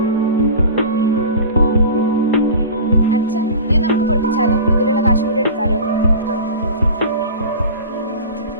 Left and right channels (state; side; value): inverted; both; correlation -0.33